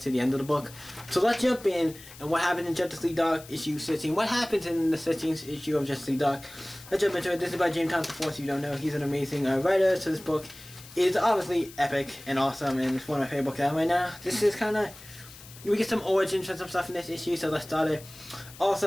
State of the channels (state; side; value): noise; left; hiss, 18 dB below the sound